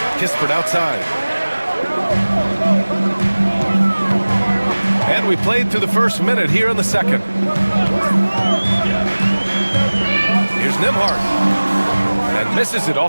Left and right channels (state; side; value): inverted; both; correlation -1.00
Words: Kispert outside. And we played through the first minute here in the second. Here's Nembhard. And misses it